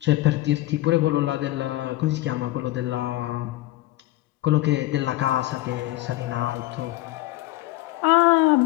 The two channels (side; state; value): right; quieter; 17.4 dB